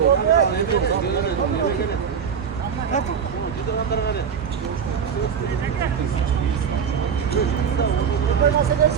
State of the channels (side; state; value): left; quieter; 7.1 dB